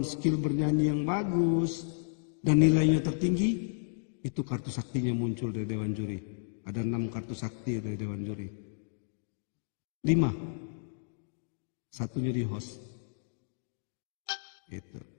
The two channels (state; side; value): silent; right; digital silence